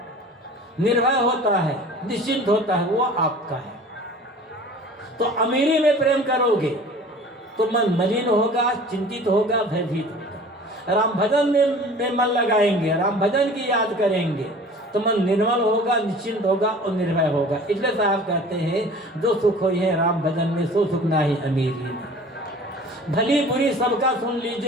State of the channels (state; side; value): normal; both; correlation 0.44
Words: निर्भय होता है, निश्चिंत होता है, वो आपका है। तो अमीरी में प्रेम करोगे तो मन मलिन होगा, चिंतित होगा, भयभीत होगा। राम भजन में मन लगाएंगे, राम भजन की याद करेंगे तो मन निर्मल होगा, निश्चिंत होगा और निर्भय होगा। इसलिए साहब कहते हैं जो सुख हो है राम भजन में, सो सुख ना ही अमीरी में। भली बुरी सबका सुन